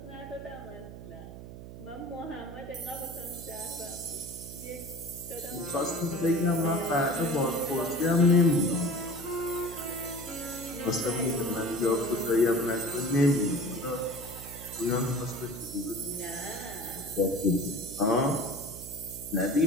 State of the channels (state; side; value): noise; right; hum, 13 dB below the sound